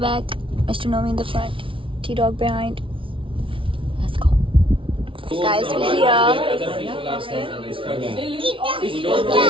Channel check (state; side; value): late; left; 0.25 ms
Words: Mr. Nomi in the front, T-Dog behind. Let's go. Guys, we're here.